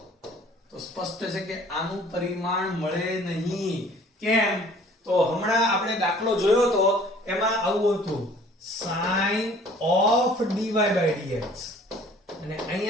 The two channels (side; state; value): both; normal; correlation 0.53